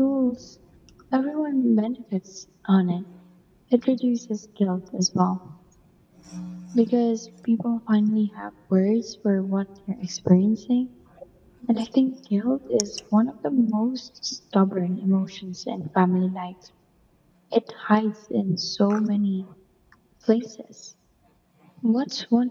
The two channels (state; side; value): identical; both; correlation 1.00